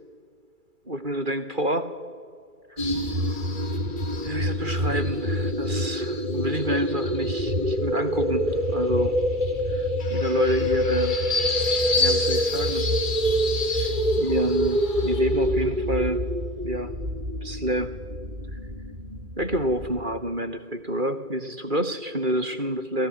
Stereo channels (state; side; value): late; left; 2.3 ms